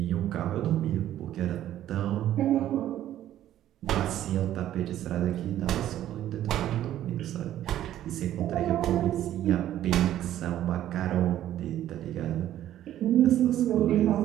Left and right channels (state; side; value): quieter; left; 12.3 dB